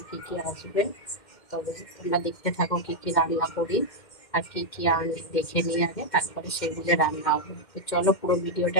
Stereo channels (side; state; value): right; late; 2.1 ms